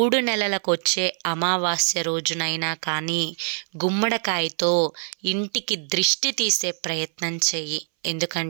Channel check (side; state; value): left; silent; 61 dB below the other